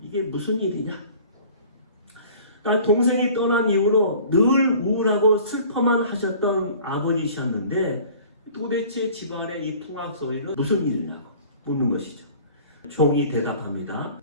이게 무슨 일이냐? 동생이 떠난 이후로 늘 우울하고 슬퍼만 하셨던 아버지셨는데 도대체 집안의 이 풍악 소리는 무슨 일이냐고 묻는 것이죠. 종이 대답합니다.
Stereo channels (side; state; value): both; inverted; correlation -0.48